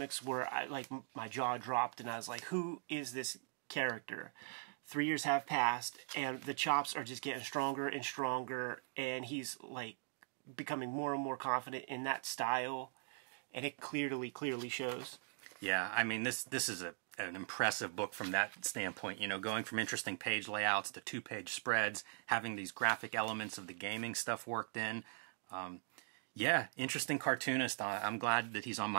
where my jaw dropped and I was like, who is this character? 3 years have passed and the chops are just getting stronger and stronger, and he's becoming more and more confident in that style, and it clearly shows. Yeah, I mean this is an impressive book from that standpoint, going from interesting page layouts to 2-page spreads, having these graphic elements of the gaming stuff worked in. Yeah, interesting cartoonist. I'm glad that he's on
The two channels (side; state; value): left; silent; digital silence